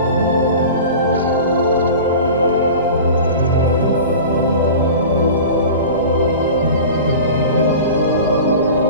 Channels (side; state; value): both; inverted; correlation -0.36